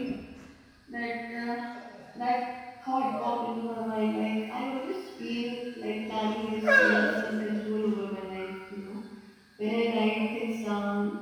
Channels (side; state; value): both; identical; correlation 1.00